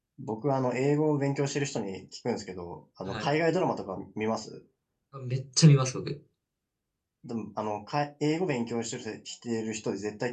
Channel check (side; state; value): both; identical; correlation 1.00